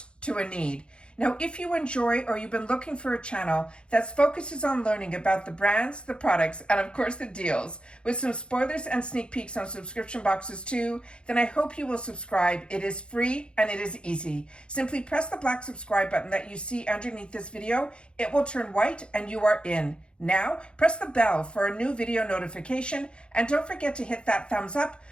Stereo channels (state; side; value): late; right; 0.055 ms